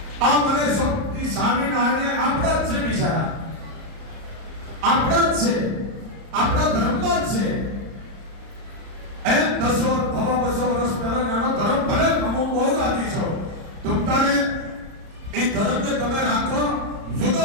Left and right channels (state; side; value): late; left; 30 ms